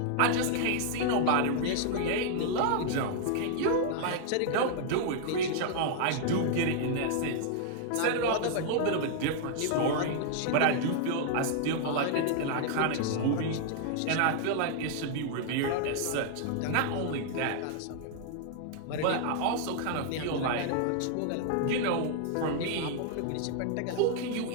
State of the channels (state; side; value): different; both; correlation -0.01